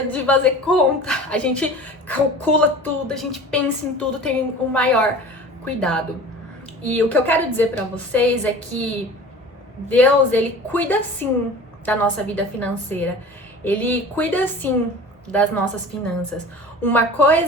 de fazer conta. A gente calcula tudo, a gente pensa em tudo, tem o maior cuidado. E o que eu quero dizer pra vocês é que Deus, Ele cuida sim da nossa vida financeira. Ele cuida sim das nossas finanças. Uma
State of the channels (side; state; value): both; normal; correlation 0.40